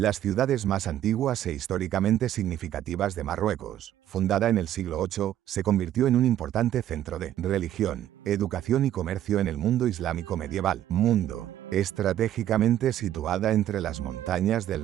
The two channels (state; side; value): quieter; left; 11.9 dB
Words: ciudades más antiguas e históricamente significativas de Marruecos. Fundada en el siglo VIII, se convirtió en un importante centro de religión, educación y comercio en el mundo islámico medieval. Mundo, estratégicamente situada entre las montañas